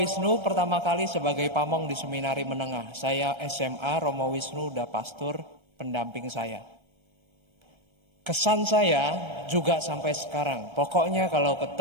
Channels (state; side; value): late; left; 1.3 ms